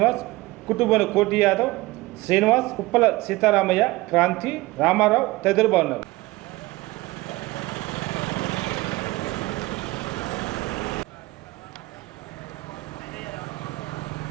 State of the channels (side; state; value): left; quieter; 20.3 dB